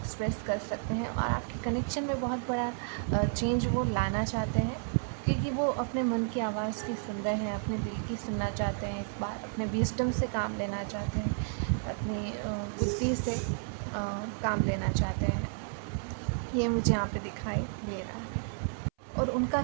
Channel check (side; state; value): left; silent; 57 dB below the other